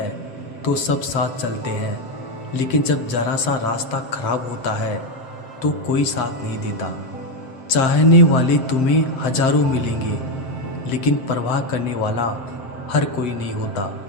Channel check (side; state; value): right; late; 7.6 ms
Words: तो सब साथ चलते हैं, लेकिन जब जरा सा रास्ता खराब होता है तो कोई साथ नहीं देता। चाहने वाले तुम्हें हजारों मिलेंगे, लेकिन परवाह करने वाला हर कोई नहीं होता।